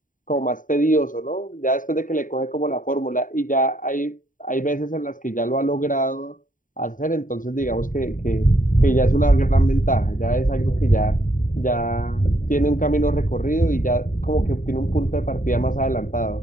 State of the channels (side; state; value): right; late; 0.38 ms